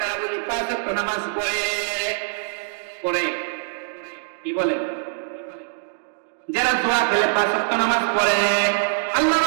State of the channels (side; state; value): left; silent; digital silence